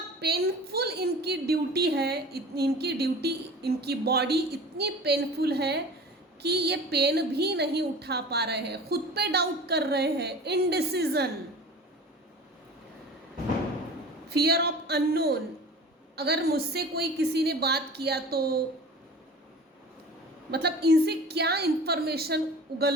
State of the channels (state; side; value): normal; both; correlation 0.39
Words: पेनफुल इनकी ड्यूटी है, इनकी बॉडी इतनी पेनफुल है कि ये पेन भी नहीं उठा पा रहे हैं, खुद पे डाउट कर रहे हैं, इनडिसीजन, फियर ऑफ अननोन। अगर मुझसे कोई किसी ने बात किया तो मतलब इनसे क्या इंफॉर्मेशन